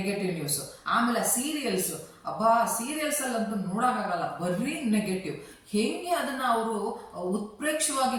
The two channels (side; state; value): both; identical; correlation 1.00